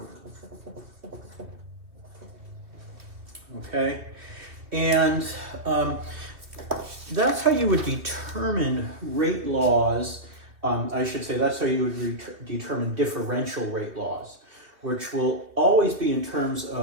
Okay, and that's how you would determine rate laws. I should say that's how you would determine differential rate laws, which will always be in terms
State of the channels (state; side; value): late; left; 2.6 ms